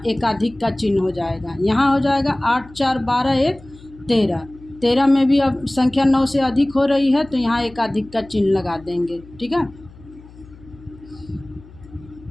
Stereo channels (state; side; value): noise; left; hum, 22 dB below the sound